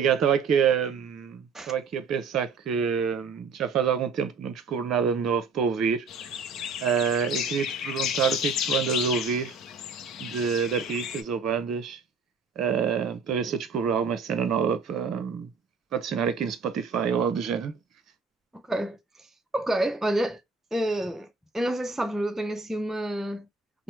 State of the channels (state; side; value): quieter; left; 4.5 dB